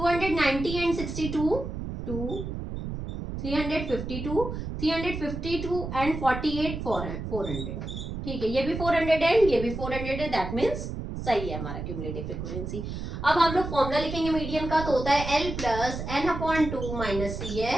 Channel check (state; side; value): noise; right; rumble, 6 dB below the sound